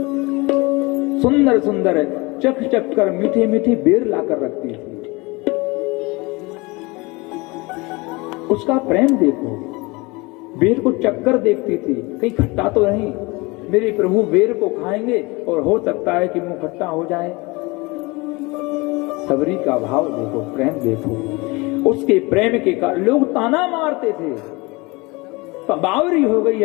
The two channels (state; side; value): quieter; right; 25.0 dB